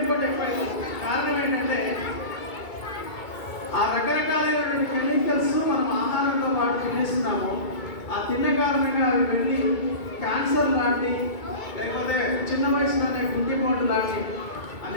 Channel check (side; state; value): right; late; 2.2 ms